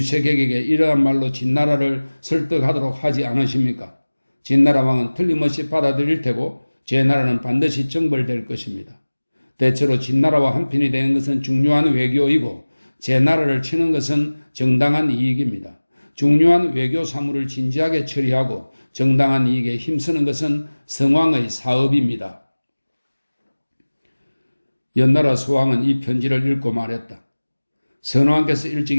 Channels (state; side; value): inverted; both; correlation -1.00